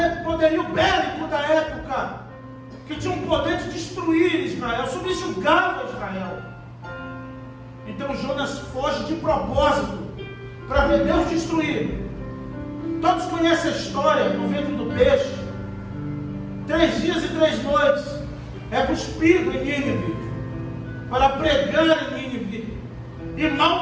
poderio bélico da época, que tinha um poder de destruir Israel, subjugava Israel. Então Jonas foge de propósito para ver Deus destruir. Todos conhecem a história do ventre do peixe. 3 dias e 3 noites é cuspido em Nínive para pregar em Nínive. E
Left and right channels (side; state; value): both; identical; correlation 1.00